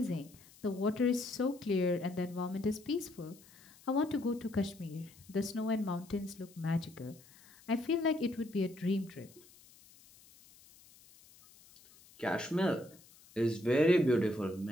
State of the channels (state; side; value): noise; left; hiss, 24 dB below the sound